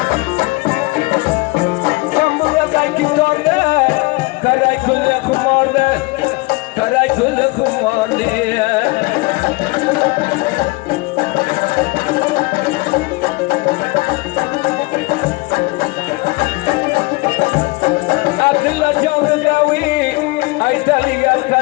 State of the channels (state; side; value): quieter; right; 25.2 dB